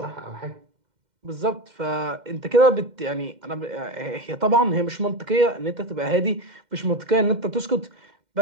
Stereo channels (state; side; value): late; left; 2.1 ms